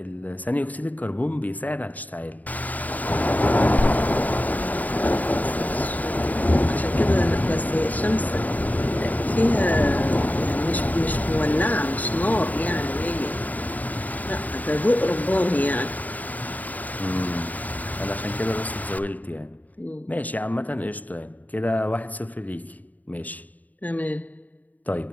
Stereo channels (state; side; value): late; right; 0.077 ms